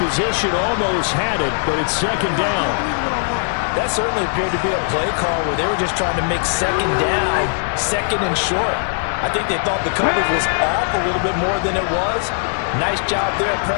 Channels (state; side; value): silent; right; digital silence